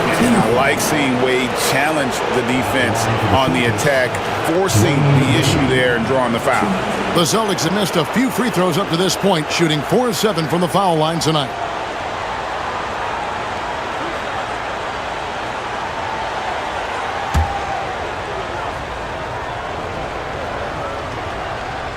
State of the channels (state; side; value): identical; both; correlation 1.00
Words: I like seeing Wade challenge the defense on the attack, forcing the issue there and drawing the foul. The Celtics have missed a few free throws up to this point, shooting 4-7 from the foul line tonight.